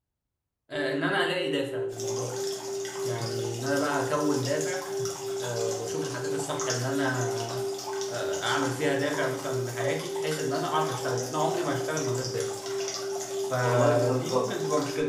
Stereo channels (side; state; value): both; identical; correlation 1.00